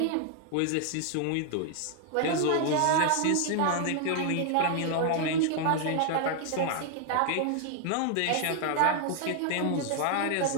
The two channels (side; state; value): both; different; correlation 0.00